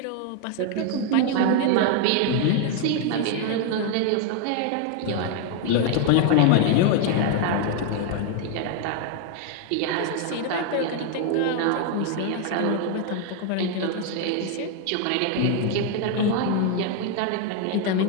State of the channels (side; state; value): both; different; correlation 0.01